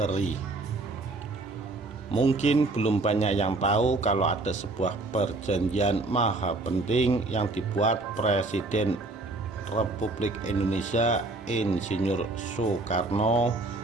Mungkin belum banyak yang tahu kalau ada sebuah perjanjian maha penting yang dibuat Presiden Republik Indonesia Insinyur Soekarno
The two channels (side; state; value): left; quieter; 3.1 dB